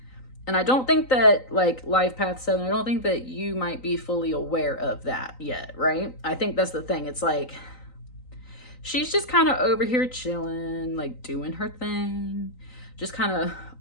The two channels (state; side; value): late; right; 3.9 ms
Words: And I don't think that, like, Life Path 7, I don't think that you might be fully aware of that yet, right? I think that's the thing. It's like, she's just kind of over here chilling, like, doing her thing. Just kind of